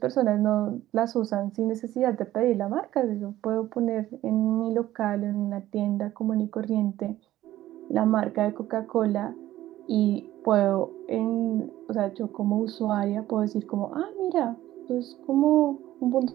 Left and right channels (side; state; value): left; quieter; 14.4 dB